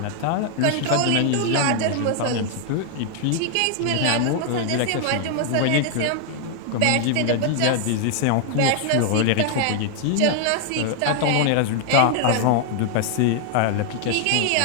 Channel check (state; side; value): different; both; correlation 0.00